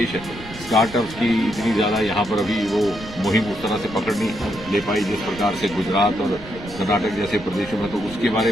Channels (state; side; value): noise; right; rumble, 16 dB below the sound